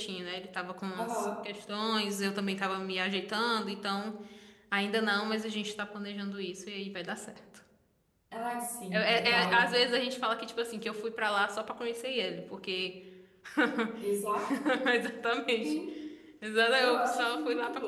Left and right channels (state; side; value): identical; both; correlation 1.00